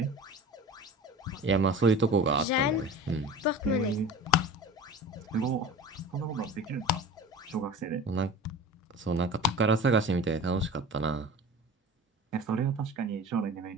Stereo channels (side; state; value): both; normal; correlation 0.37